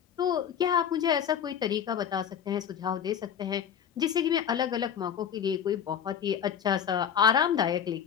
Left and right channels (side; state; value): right; quieter; 8.5 dB